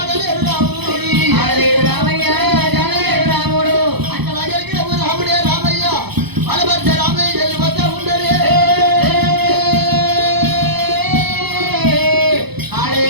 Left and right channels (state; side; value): late; left; 0.98 ms